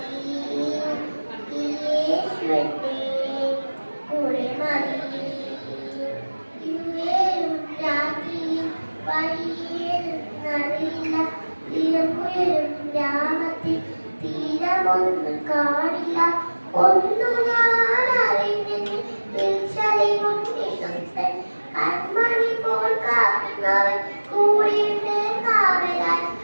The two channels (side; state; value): both; inverted; correlation -1.00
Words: ഈ യേശുവിന്റെ കൂടെ മതി. രാത്രിയിൽ വഴിയേറില്ല, തിരമുയരും ഗ്രാമത്തിൽ തീരമൊന്നും കാണില്ല. ഒന്നു ഞാൻ അറിഞ്ഞെങ്കിൽ കൺമണി പോൽ കാക്കുന്നവൻ കൂടിയിട്ട് കാവലാൽ